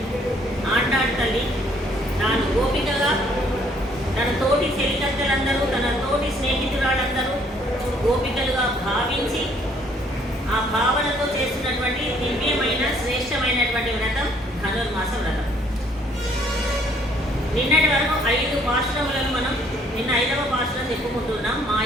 ఆండాళ్ తల్లి తాను గోపికగా తన తోటి చెలికత్తెలందరూ, తన తోటి స్నేహితురాళ్ళందరూ గోపికలుగా భావించి ఆ భావనతో చేస్తున్నటువంటి దివ్యమైన శ్రేష్టమైనటువంటి వ్రతం ధనుర్మాస వ్రతం. నిన్నటి వరకు 5 పాశురములను మనం నిన్న 5వ పాశురం చెప్పుకుంటున్నాం.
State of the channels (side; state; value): both; normal; correlation 0.63